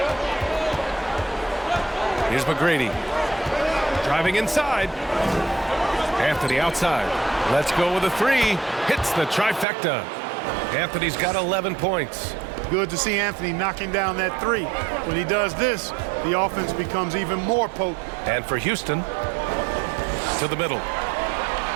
Here's McGrady. Driving inside. Anthony outside. Let's go with a three. Hits the trifecta. Anthony's got 11 points. Good to see Anthony knocking down that three. When he does this, the offense becomes even more potent. And for Houston, to the middle.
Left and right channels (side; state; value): left; drops out; at 9.7 s